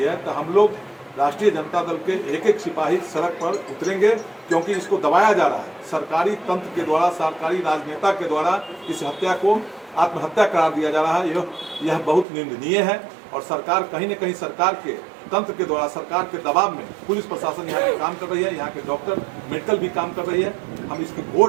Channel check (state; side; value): drops out; left; at 12.2 s